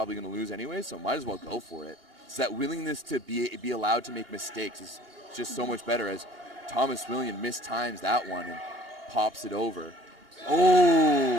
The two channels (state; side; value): late; left; 2.8 ms